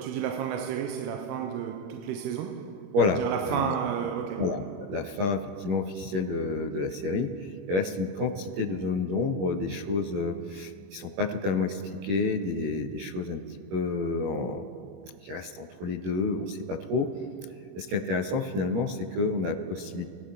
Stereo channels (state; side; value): late; left; 21 ms